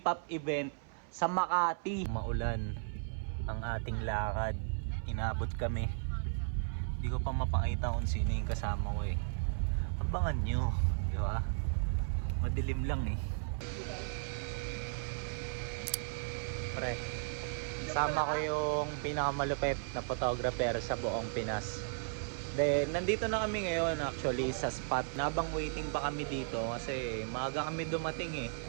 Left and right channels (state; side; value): silent; left; 54 dB below the other